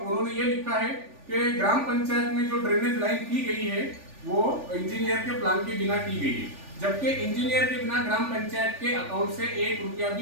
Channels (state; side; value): late; left; 3.4 ms